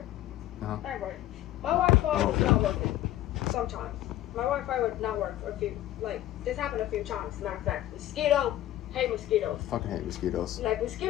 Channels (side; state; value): right; quieter; 13.8 dB